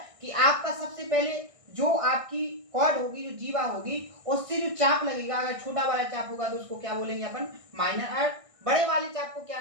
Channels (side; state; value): left; late; 1.6 ms